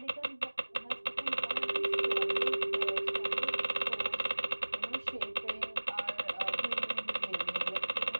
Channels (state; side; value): inverted; both; correlation -1.00